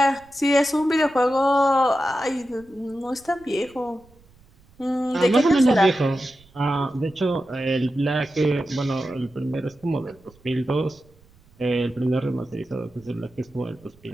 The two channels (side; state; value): right; noise; rumble, 28 dB below the sound